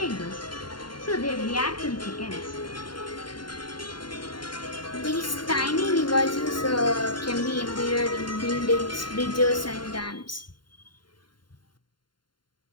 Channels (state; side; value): late; right; 0.72 ms